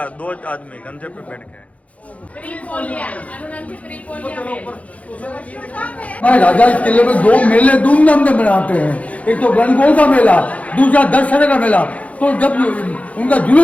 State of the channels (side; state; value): right; late; 0.066 ms